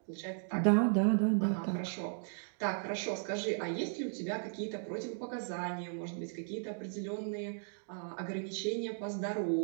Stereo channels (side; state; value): left; silent; digital silence